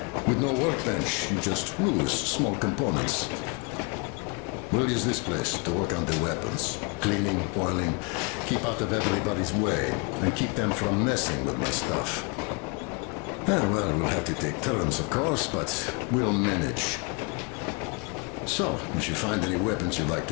With no workbench, you just lose small components. We'll use this place to work on the weapons. Cleaning, oiling, keep out of everybody's way, and keep them from messing with my stuff. Well, we'll have to take turns, of course, but we'll manage. So, if you find any weapons you'd like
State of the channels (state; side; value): quieter; right; 30.8 dB